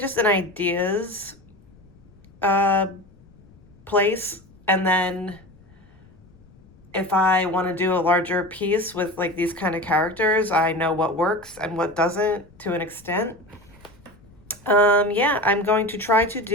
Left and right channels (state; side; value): noise; left; rumble, 26 dB below the sound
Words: an ideas place, and then if I want to do a larger piece with like these kind of characters, I know what works and what doesn't to an extent. Yeah, I'm going to try to